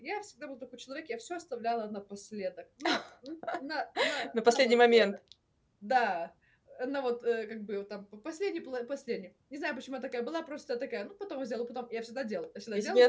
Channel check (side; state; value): both; identical; correlation 1.00